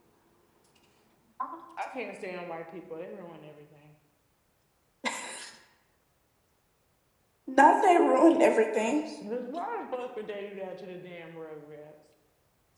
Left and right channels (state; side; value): identical; both; correlation 1.00